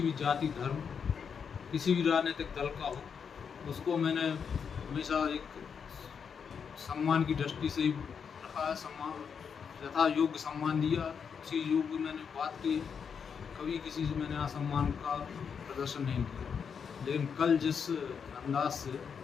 भी जाति धर्म किसी भी राजनीतिक दल का हो, उसको मैंने हमेशा एक सम्मान की दृष्टि से ही रखा है, सम्मान यथा योग्य सम्मान दिया, उसी योग्य मैंने बात की, कभी किसी से मैंने असम्मान का प्रदर्शन नहीं किया। लेकिन कल जिस अंदाज से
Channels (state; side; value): quieter; right; 6.7 dB